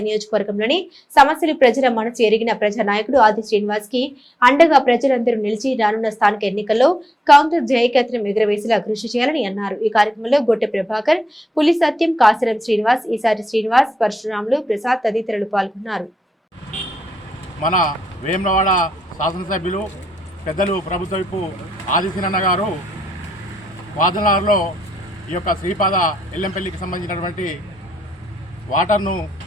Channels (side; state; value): both; normal; correlation 0.84